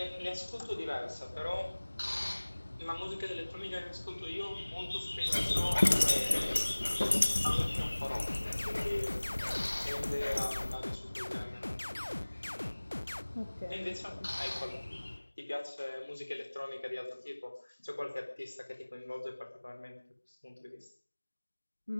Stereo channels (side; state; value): both; inverted; correlation -1.00